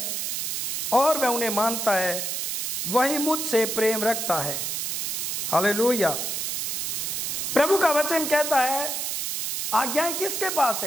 और वह उन्हें मानता है, वही मुझसे प्रेम रखता है। हालेलुया। प्रभु का वचन कहता है आज्ञाएं किसके पास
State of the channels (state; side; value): noise; right; hiss, 2 dB below the sound